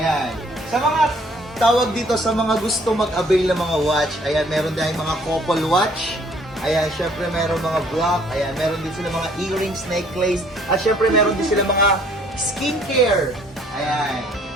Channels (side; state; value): both; normal; correlation 0.60